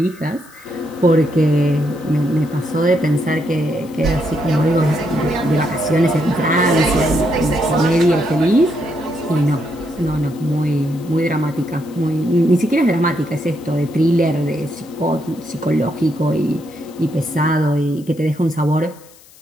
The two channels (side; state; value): left; noise; hiss, 25 dB below the sound